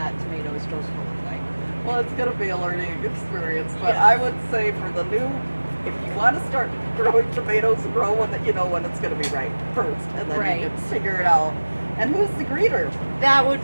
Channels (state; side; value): inverted; both; correlation -1.00